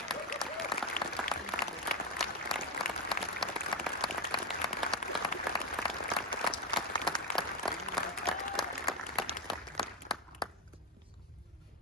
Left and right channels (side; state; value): both; normal; correlation 0.08